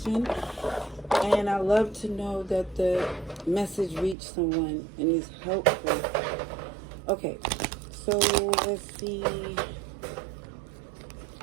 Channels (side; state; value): left; drops out; at 4.2 s